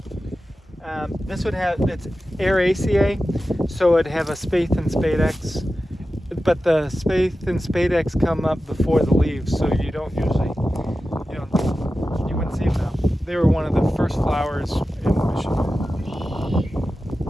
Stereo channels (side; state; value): both; normal; correlation 0.93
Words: This would have, it's Aeraceae, so it'd have a spathe and spadex, but the spathe and spadex come up before the leaves, so you don't usually, you wouldn't see them now. They were one of the first flowers in Michigan.